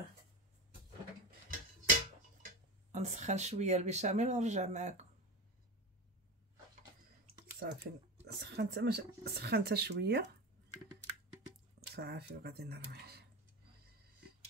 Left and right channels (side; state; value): both; normal; correlation 0.26